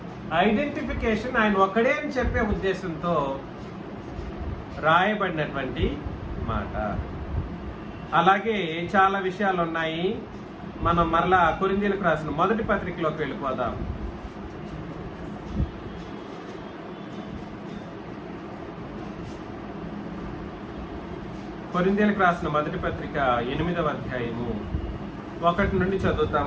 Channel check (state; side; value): identical; both; correlation 1.00